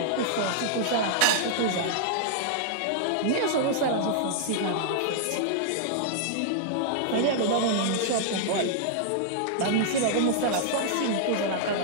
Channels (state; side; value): different; both; correlation -0.01